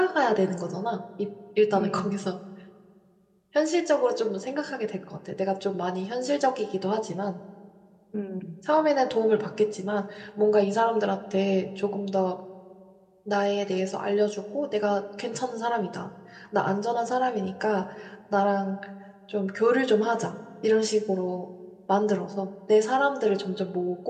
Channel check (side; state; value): both; identical; correlation 1.00